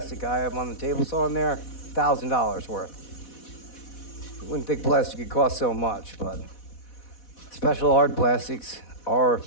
I have on the table saw in there, $1,000 worth. You wouldn't think plastic could cost so much, but special hard plastics are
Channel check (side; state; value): right; late; 4.1 ms